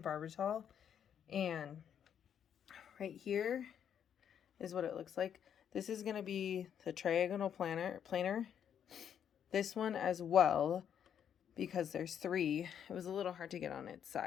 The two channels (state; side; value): quieter; right; 8.7 dB